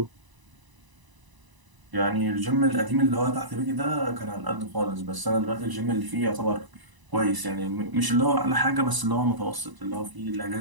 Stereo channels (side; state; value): left; late; 1.0 ms